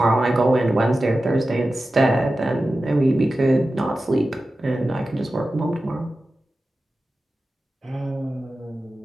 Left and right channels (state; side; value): normal; both; correlation 0.94